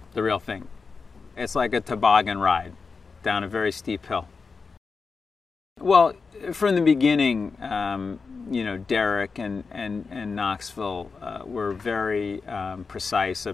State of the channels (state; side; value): quieter; right; 4.8 dB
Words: the real thing. It's like a toboggan ride down a very steep hill. Well, from the beginning, Derek and Knoxville were very precise